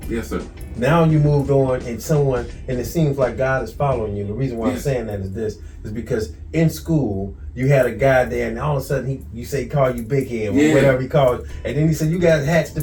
Yes, sir. Now you moved on and it seems like God is following you. The reason why I'm saying that is because in school you had a guy there and all of a sudden he called you big head or whatever he called you. And then he said you got hats to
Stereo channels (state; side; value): identical; both; correlation 1.00